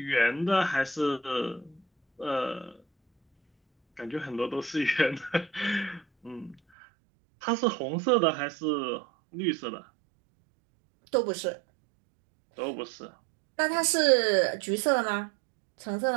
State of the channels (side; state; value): left; drops out; at 6.6 s